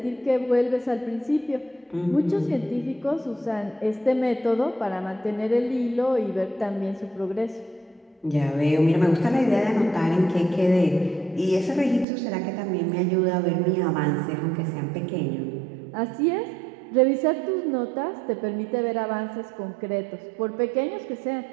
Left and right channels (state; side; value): drops out; left; at 12.1 s